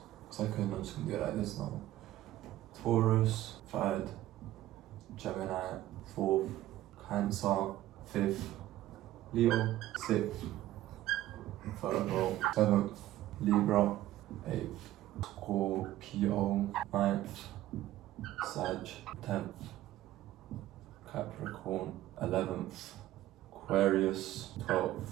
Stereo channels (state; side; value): quieter; left; 14.6 dB